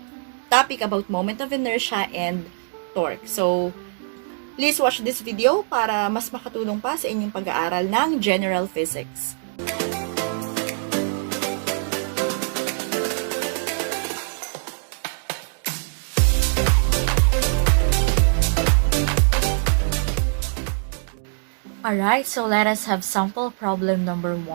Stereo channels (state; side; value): silent; left; digital silence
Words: topic about moment of inertia and torque. So, please watch this video para mas makatulong pa sa inyong pag-aaral ng General Physics. Alright, so let us have sample problem number